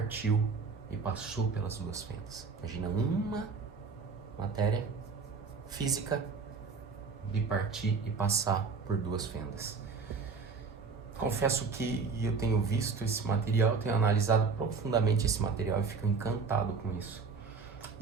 e passou pelas duas fendas. Imagina uma matéria física bipartir e passar por duas fendas. Confesso que eu tenho visto esse material, tenho analisado profundamente esse material e fico encantado com isso.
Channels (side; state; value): left; quieter; 4.9 dB